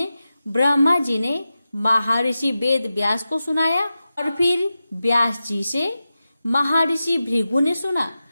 ब्रह्मा जी ने महर्षि वेद व्यास को सुनाया और फिर व्यास जी से महर्षि भृगु ने सुना।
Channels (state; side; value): inverted; both; correlation -0.93